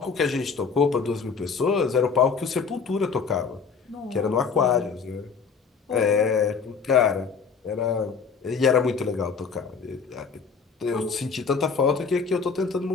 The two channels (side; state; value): right; quieter; 5.6 dB